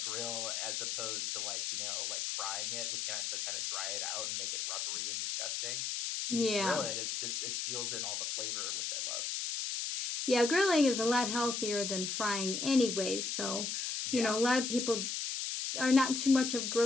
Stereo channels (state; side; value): noise; left; hiss, 1 dB below the sound